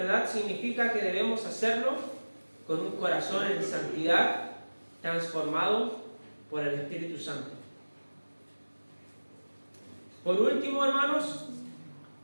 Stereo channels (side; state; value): both; inverted; correlation -1.00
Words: significa que debemos hacerlo con un corazón en santidad, transformado por el Espíritu Santo. Por último, hermanos,